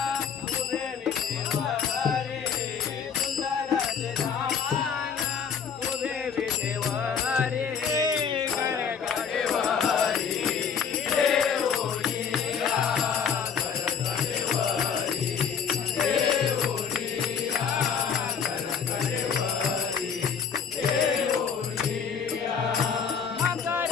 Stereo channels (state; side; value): quieter; right; 7.0 dB